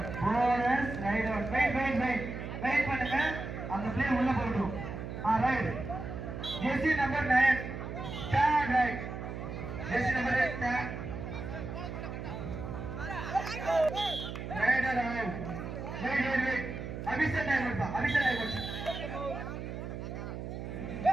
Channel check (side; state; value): right; noise; hum, 7 dB below the sound